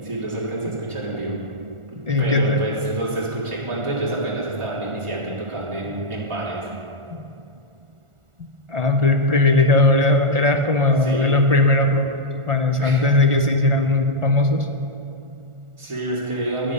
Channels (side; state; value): left; late; 1.4 ms